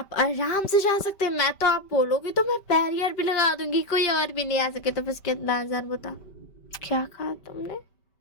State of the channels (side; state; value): right; late; 5.2 ms